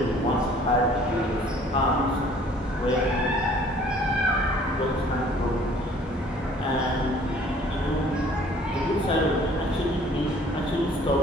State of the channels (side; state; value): both; normal; correlation 0.55